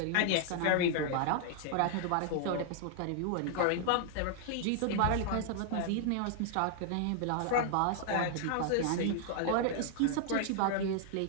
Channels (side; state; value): both; different; correlation -0.01